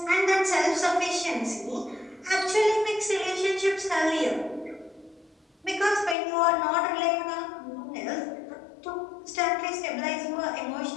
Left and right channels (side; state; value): right; drops out; at 6.2 s